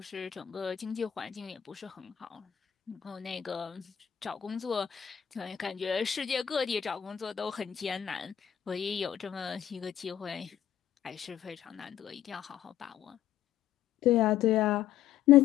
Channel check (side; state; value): right; quieter; 10.4 dB